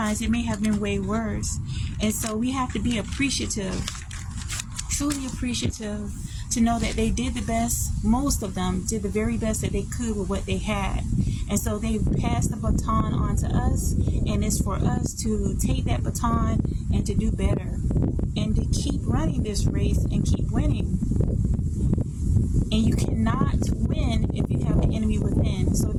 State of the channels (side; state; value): both; identical; correlation 1.00